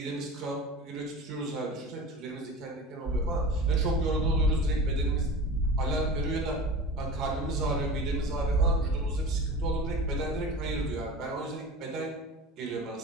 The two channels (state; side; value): normal; both; correlation 0.34